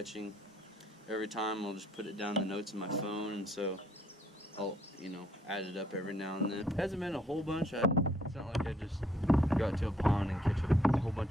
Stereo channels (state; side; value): normal; both; correlation 0.66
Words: Every time I'll just put it down in the notes in my phone, and so I'll, you know, add it up every now and then. It hasn't been a whole bunch. It's not like I just go out to a pond and catch a whole